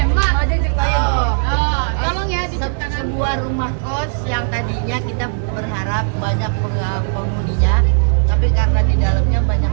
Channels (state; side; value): silent; left; digital silence